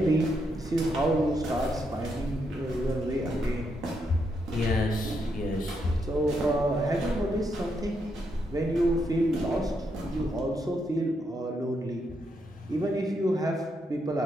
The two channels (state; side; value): normal; both; correlation 0.79